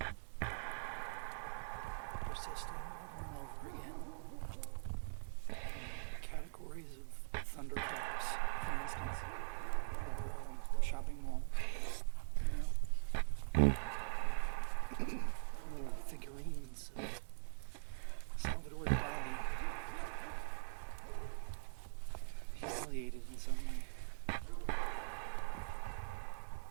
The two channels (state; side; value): silent; left; digital silence